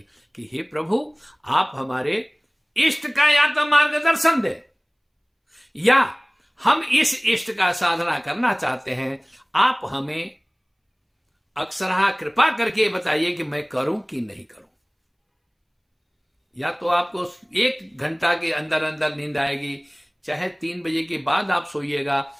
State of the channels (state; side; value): identical; both; correlation 1.00